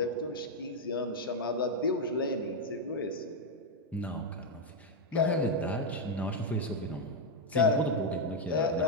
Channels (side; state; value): both; normal; correlation 0.01